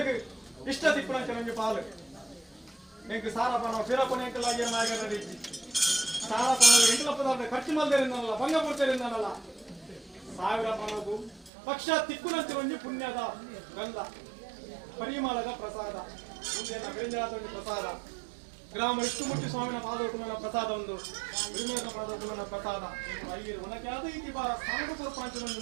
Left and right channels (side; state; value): left; drops out; at 11.5 s